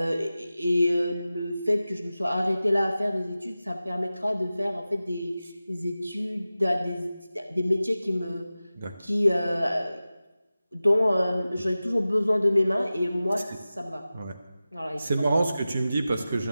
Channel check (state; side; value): inverted; both; correlation -0.95